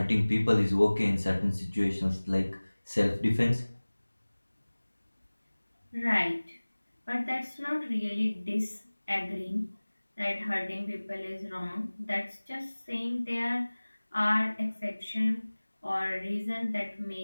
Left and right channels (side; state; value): both; inverted; correlation -1.00